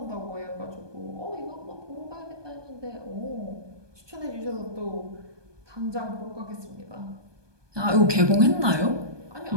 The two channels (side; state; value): left; late; 1.2 ms